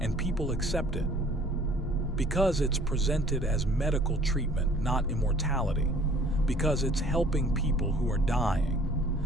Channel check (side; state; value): both; normal; correlation 0.54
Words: people accept it. Because it's presented as medical treatment, not immortality. Because it's helping people who are dying.